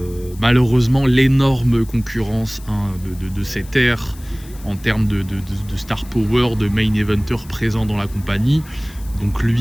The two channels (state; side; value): noise; left; hiss, 22 dB below the sound